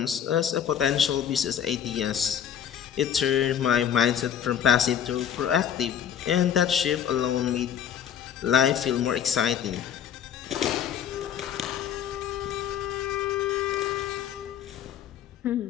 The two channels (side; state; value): right; quieter; 9.1 dB